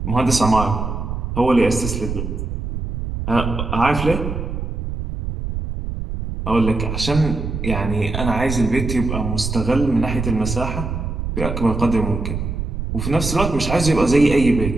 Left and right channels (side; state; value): right; noise; rumble, 4 dB below the sound